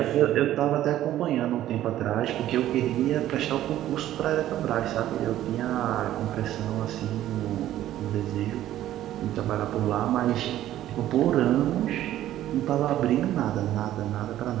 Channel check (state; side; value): quieter; left; 13.1 dB